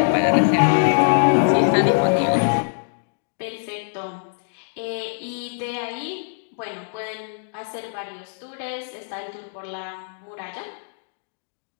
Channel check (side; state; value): right; silent; digital silence